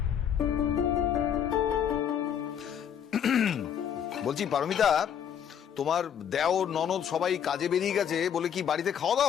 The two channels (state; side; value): quieter; right; 8.7 dB